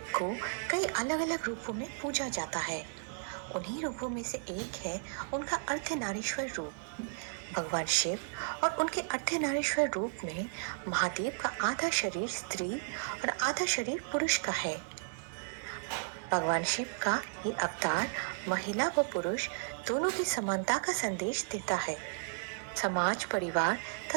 को कई अलग अलग रूपों में पूजा जाता है। उन्हीं रूपों में से एक है उनका अर्धनारीश्वर रूप। भगवान शिव और उनके अर्धनारीश्वर रूप में महादेव का आधा शरीर स्त्री और आधा शरीर पुरुष का है। भगवान शिव का ये अवतार महिला व पुरुष दोनों की समानता का संदेश देता है। समाज, परिवार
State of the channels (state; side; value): silent; left; digital silence